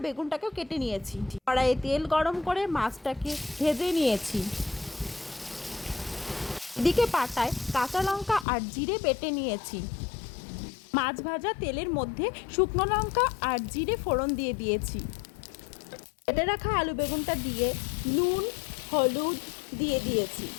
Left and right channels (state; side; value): drops out; right; at 8.5 s